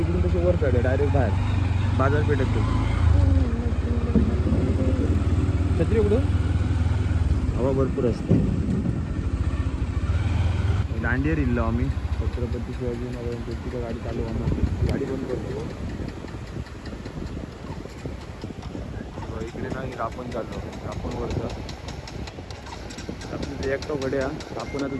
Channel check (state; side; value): identical; both; correlation 1.00